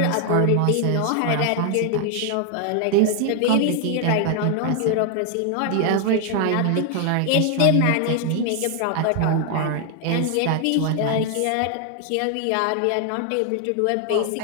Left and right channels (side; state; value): both; different; correlation 0.00